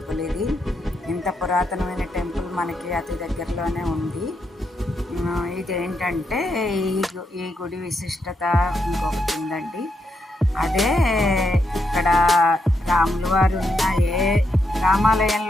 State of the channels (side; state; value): both; normal; correlation 0.81